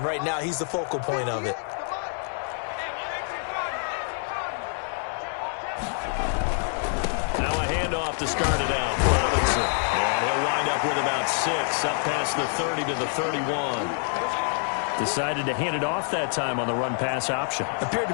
right now, he's the focal point of it. Now a handoff to start it out for Robinson. And he'll wind up with about 6, up past the 30 to the 31. Decided to hand it off that time on the run-pass option. Appeared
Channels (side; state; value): right; silent; 59 dB below the other